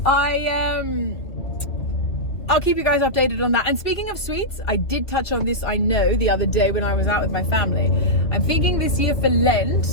I'll keep you guys updated on that. And speaking of sweets, I did touch on this, I know, the other day when I was out with my family. I'm thinking this year for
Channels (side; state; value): right; late; 2.5 ms